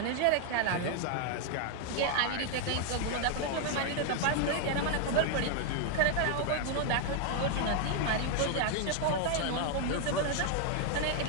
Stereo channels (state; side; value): different; both; correlation 0.00